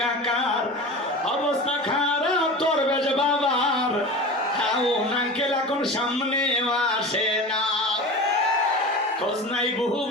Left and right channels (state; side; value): normal; both; correlation 0.32